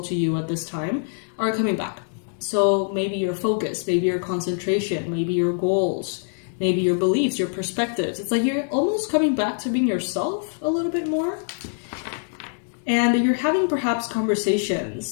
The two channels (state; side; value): silent; right; digital silence